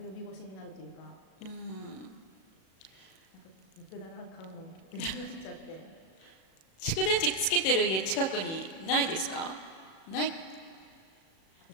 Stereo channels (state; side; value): late; right; 37 ms